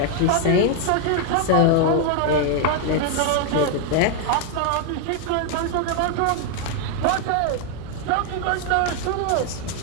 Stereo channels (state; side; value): different; both; correlation 0.01